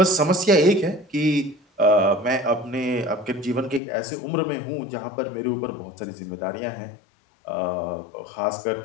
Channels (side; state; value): right; drops out; at 3.8 s